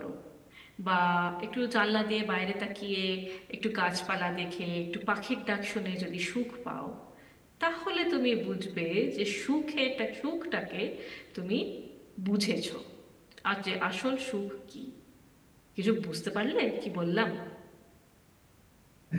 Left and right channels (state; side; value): identical; both; correlation 1.00